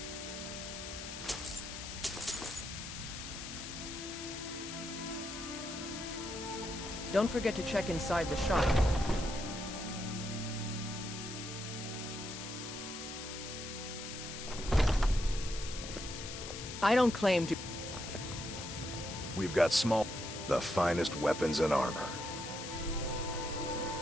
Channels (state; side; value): noise; left; hiss, 8 dB below the sound